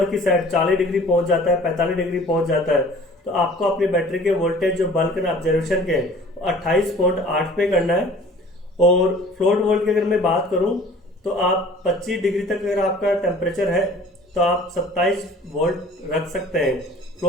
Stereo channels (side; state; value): both; normal; correlation 0.48